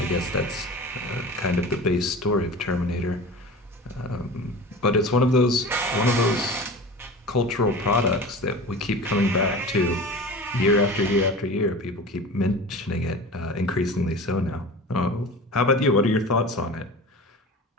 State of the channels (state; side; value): normal; both; correlation 0.35